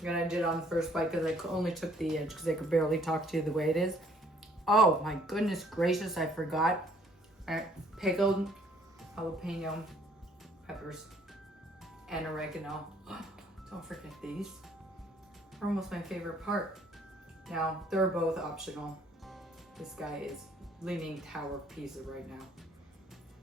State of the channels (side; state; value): both; normal; correlation 0.61